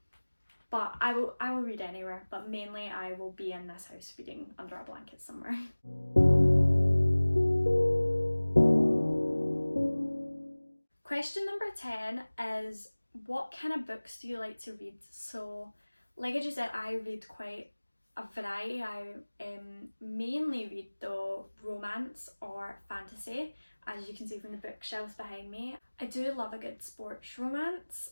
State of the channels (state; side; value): inverted; both; correlation -1.00